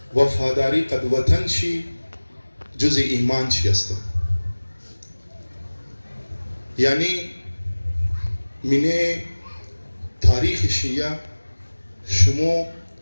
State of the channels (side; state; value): both; inverted; correlation -1.00